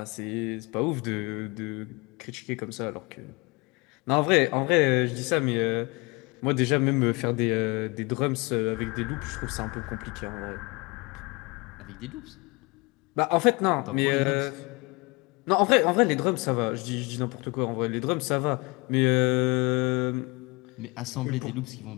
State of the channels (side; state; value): right; quieter; 26.8 dB